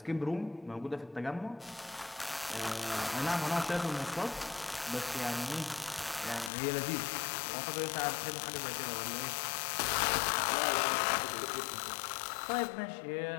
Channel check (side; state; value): right; drops out; at 6.5 s